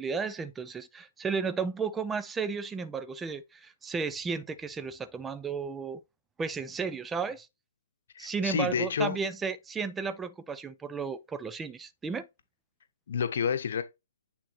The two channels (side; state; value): both; normal; correlation 0.22